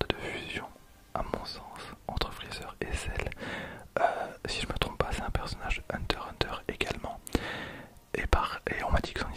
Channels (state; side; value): identical; both; correlation 1.00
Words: de fusion, à mon sens, entre Freezer et Cell. Si je me trompe pas, c'est un personnage Hunter x Hunter également. Et on m'a dit que son